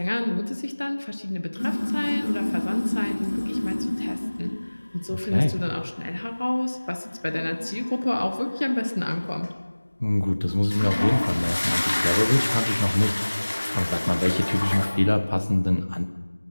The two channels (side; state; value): both; inverted; correlation -1.00